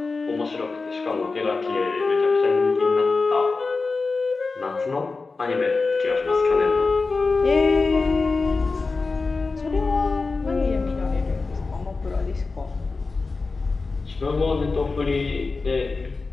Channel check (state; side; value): quieter; right; 4.0 dB